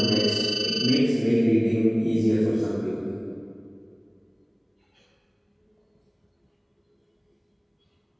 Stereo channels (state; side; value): identical; both; correlation 1.00